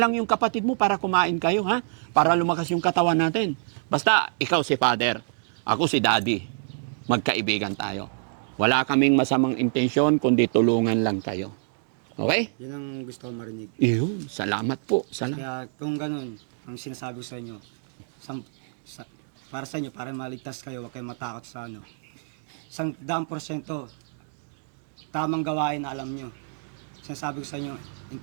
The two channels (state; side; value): silent; left; digital silence